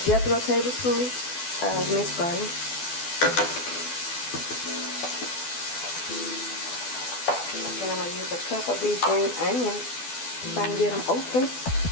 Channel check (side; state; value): right; late; 12 ms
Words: Jethro tablespoon of minced garlic. Then I'm going to use a cup of these green onions if I can get them open.